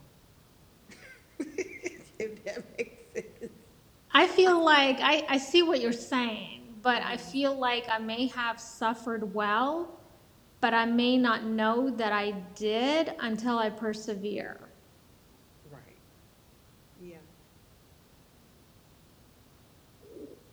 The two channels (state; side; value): identical; both; correlation 1.00